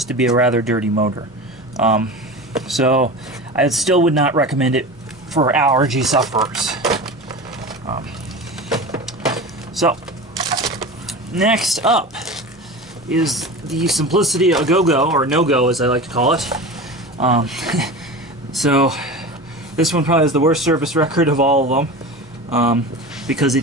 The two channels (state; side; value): normal; both; correlation 0.31